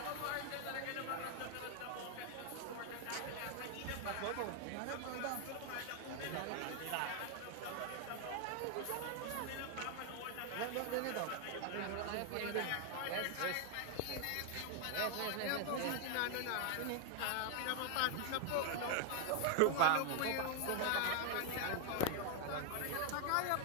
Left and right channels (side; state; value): both; different; correlation 0.00